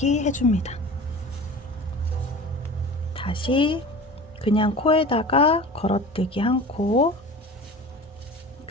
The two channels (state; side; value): normal; both; correlation 0.37